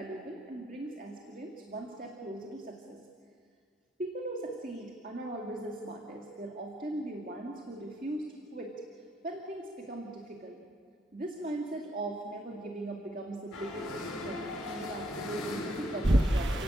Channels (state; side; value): normal; both; correlation 0.72